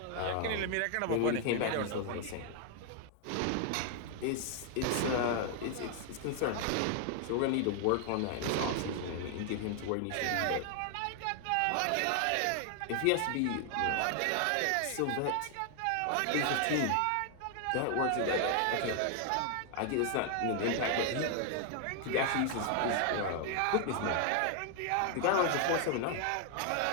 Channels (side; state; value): both; different; correlation 0.00